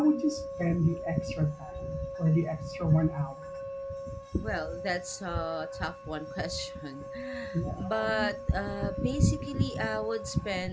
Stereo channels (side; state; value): both; identical; correlation 1.00